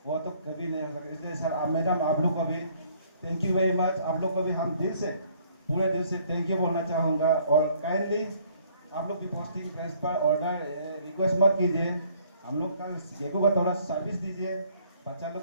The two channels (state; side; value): inverted; both; correlation -0.62